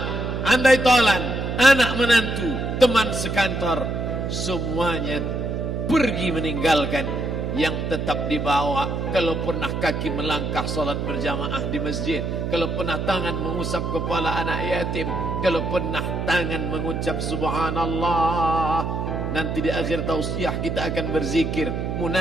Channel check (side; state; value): right; noise; hum, 2 dB below the sound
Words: andai tolan, anak menantu, teman sekantor, semuanya pergi meninggalkan. Yang tetap dibawa, kalau pernah kaki melangkah salat berjamaah di masjid, kalau pernah tangan mengusap kepala anak yatim, kalau pernah tangan mengucap subhanallah. Nanti di akhir tausiah kita akan berzikir,